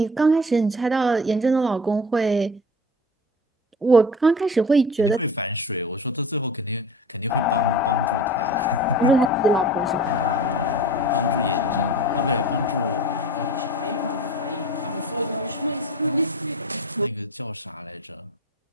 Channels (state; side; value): normal; both; correlation 0.36